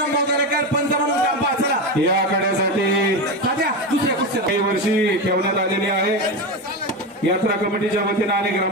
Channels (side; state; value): both; normal; correlation 0.17